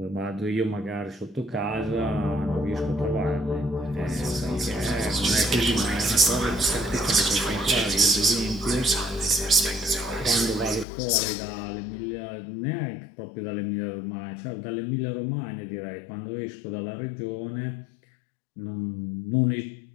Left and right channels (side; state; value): right; drops out; at 10.9 s